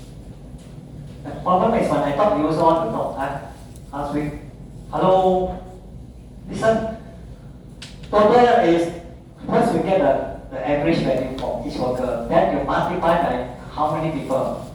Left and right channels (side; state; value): both; identical; correlation 1.00